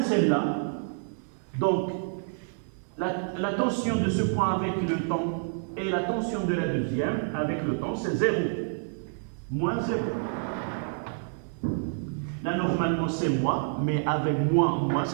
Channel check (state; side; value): silent; left; digital silence